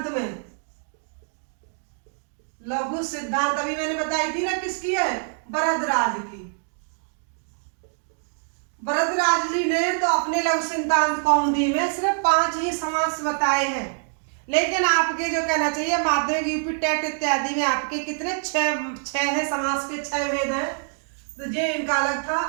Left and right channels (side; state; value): left; silent; digital silence